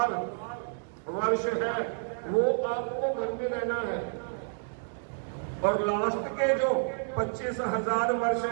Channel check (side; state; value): left; silent; digital silence